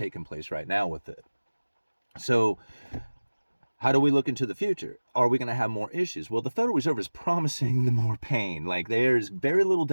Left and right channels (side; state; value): both; inverted; correlation -1.00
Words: place right now with it. So how do we look into the future? Are we going to have more issues? Well, the Federal Reserve is promising the more pain. Like there's very little